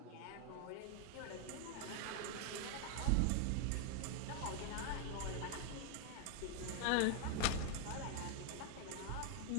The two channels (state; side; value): different; both; correlation 0.00